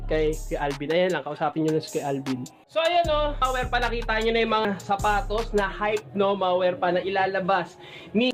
kay Alvin. Ayan lang, kausapin nyo na si Alvin. So ayan, no, mga Werpa, nakita nyo na yung mga sapatos na hype, no, mga Werpa, na ilalabas ni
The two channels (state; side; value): identical; both; correlation 1.00